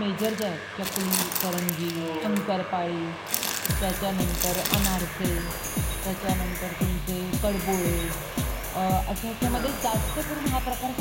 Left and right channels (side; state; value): both; identical; correlation 1.00